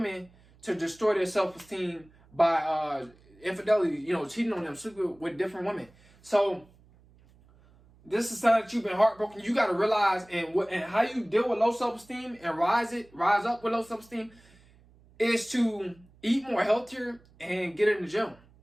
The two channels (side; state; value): right; noise; hum, 28 dB below the sound